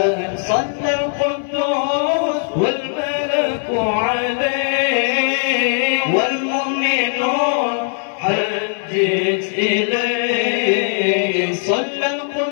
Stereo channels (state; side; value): silent; right; 58 dB below the other